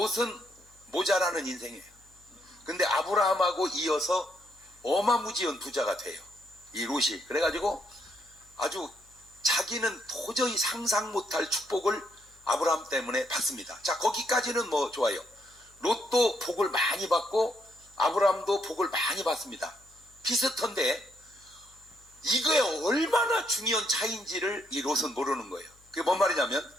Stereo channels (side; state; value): left; noise; hum, 29 dB below the sound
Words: 모자라는 인생이에요. 근데 아브라함하고 이어서 어마무지한 부자가 돼요, 이 롯이. 그래가지고 아주 자기는 도저히 상상 못할 축복을 아브라함 때문에 받습니다. 자, 거기까지는 뭐 좋아요. 롯도 복을 많이 받고 아브라함도 복을 많이 받습니다. 비슷한데 이거에 얼마나 중요한 차이인지를 이 롯은 모르는 거예요. 그게 뭔 말이냐면,